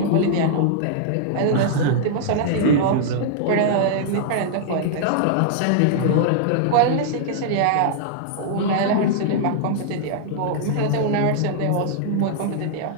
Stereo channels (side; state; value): both; different; correlation -0.01